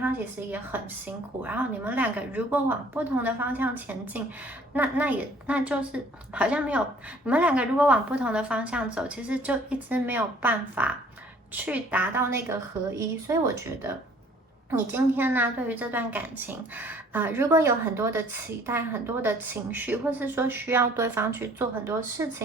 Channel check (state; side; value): normal; both; correlation 0.55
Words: 其实也很辛苦。然后你们两个如果往不同的方向前进，那就是好像没有，你们两个如果往不同的方向走，其实就一直没有办法去达到那个合一。所以我觉得你今天呢，对于这段感情，如果有很多的期待、很多的情绪，或是说需要对方去做很多事